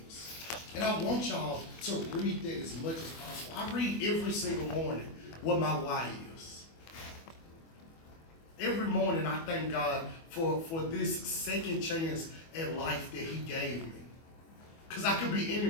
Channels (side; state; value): right; late; 24 ms